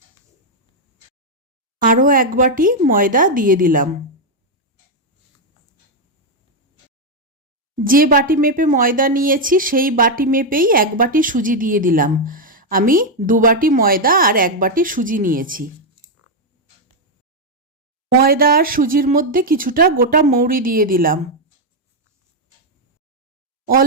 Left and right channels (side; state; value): both; normal; correlation 0.01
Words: আরও 1 বাটি ময়দা দিয়ে দিলাম। যে বাটি মেপে ময়দা নিয়েছি সেই বাটি মেপেই 1 বাটি সুজি দিয়ে দিলাম। আমি 2 বাটি ময়দা আর 1 বাটি সুজি নিয়েছি। ময়দা আর সুজির মধ্যে কিছুটা গোটা মৌরি দিয়ে দিলাম।